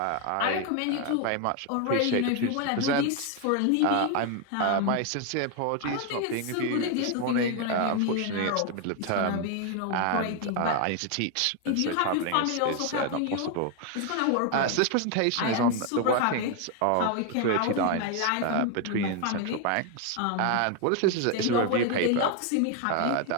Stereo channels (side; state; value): both; different; correlation 0.01